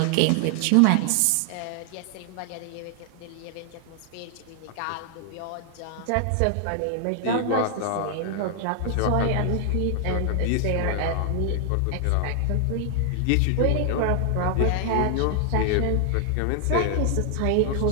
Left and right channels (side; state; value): both; different; correlation 0.00